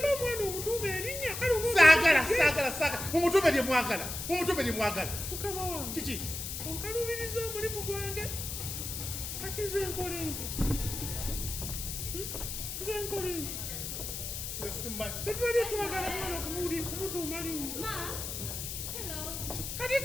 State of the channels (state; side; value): noise; left; hiss, 5 dB below the sound